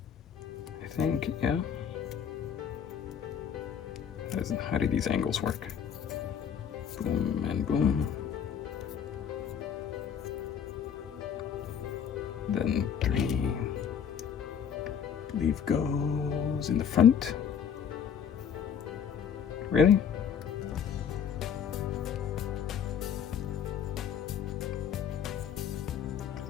I think, yeah. How do these angles work? Boom and boom. Then 3. Leaf goes in the front. Really?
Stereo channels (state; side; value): quieter; right; 8.0 dB